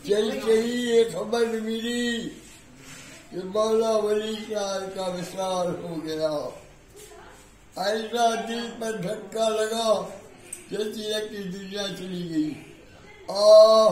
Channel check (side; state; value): both; identical; correlation 1.00